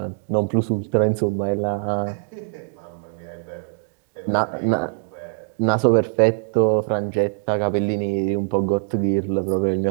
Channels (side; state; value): left; silent; 64 dB below the other